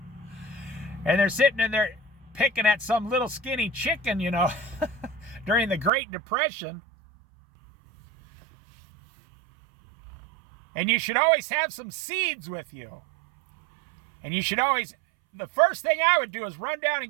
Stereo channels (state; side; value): drops out; left; at 5.9 s